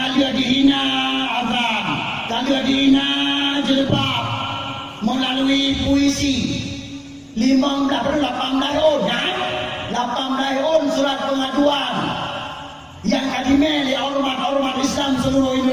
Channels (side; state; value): both; identical; correlation 1.00